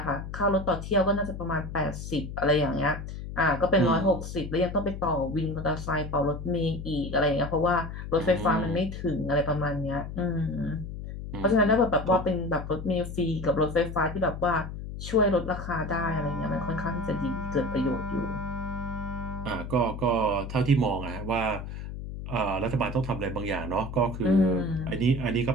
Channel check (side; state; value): left; noise; hum, 8 dB below the sound